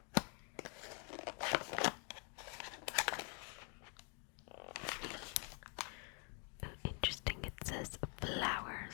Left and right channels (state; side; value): quieter; right; 38.8 dB